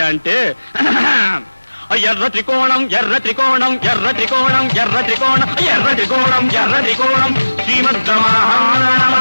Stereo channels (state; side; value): inverted; both; correlation -1.00